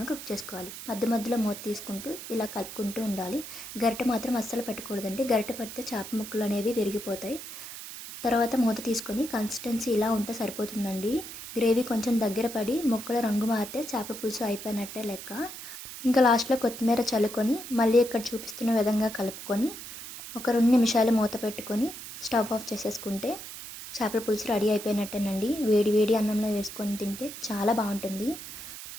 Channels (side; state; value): right; noise; hiss, 11 dB below the sound